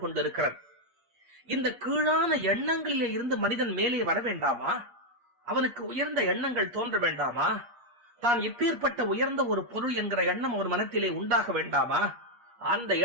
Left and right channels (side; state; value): left; late; 8.4 ms